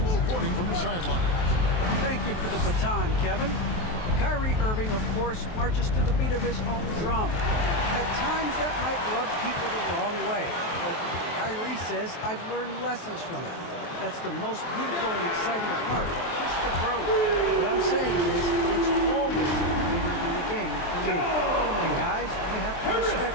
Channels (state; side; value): late; right; 23 ms